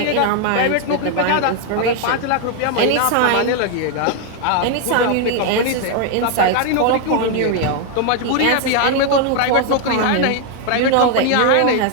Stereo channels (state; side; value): different; both; correlation 0.00